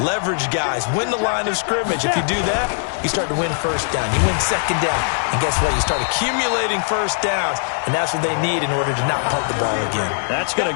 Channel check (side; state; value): right; silent; digital silence